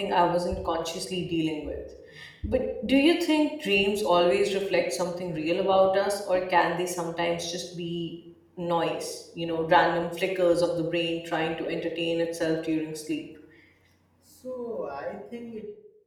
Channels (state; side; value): identical; both; correlation 1.00